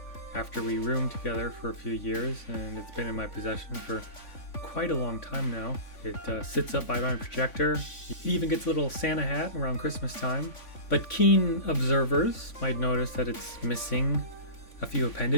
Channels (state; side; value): late; right; 3.5 ms